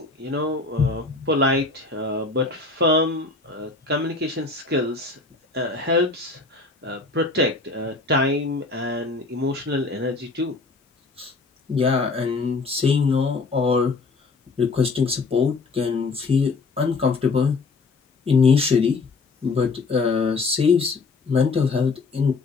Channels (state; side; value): quieter; right; 4.0 dB